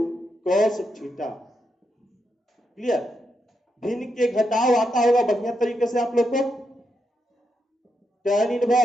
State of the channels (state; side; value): normal; both; correlation 0.83